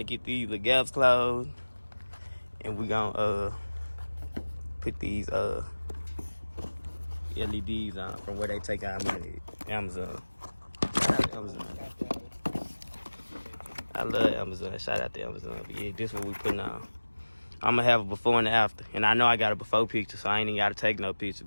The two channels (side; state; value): both; inverted; correlation -1.00